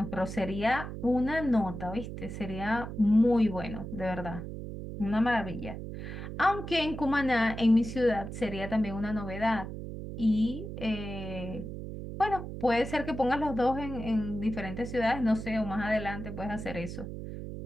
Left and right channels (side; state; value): right; noise; hum, 8 dB below the sound